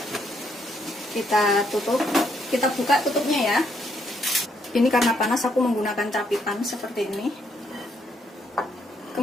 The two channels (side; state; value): both; normal; correlation 0.73